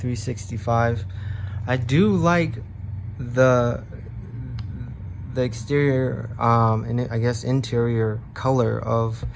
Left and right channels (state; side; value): identical; both; correlation 1.00